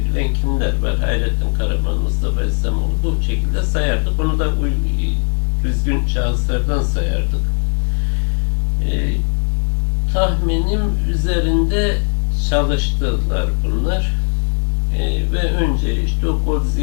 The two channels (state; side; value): silent; right; digital silence